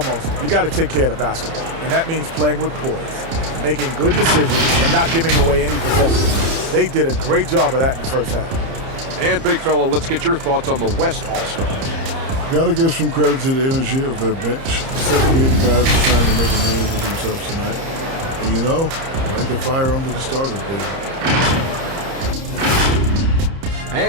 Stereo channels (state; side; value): late; left; 30 ms